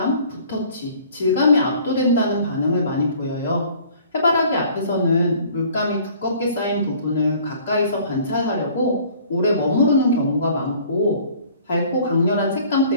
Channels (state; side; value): inverted; both; correlation -0.53